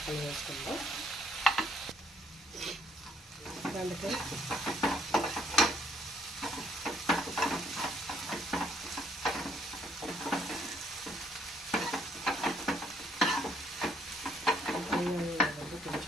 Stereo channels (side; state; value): both; normal; correlation 0.66